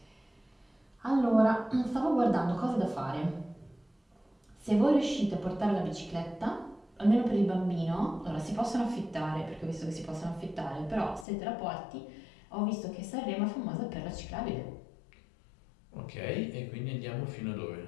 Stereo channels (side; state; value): right; drops out; at 11.2 s